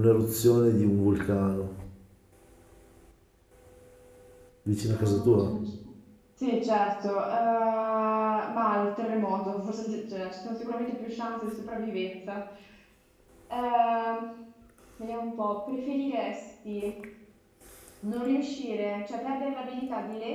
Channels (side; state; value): both; identical; correlation 1.00